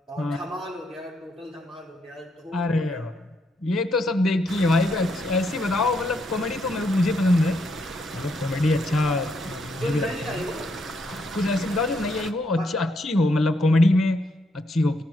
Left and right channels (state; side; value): normal; both; correlation 0.76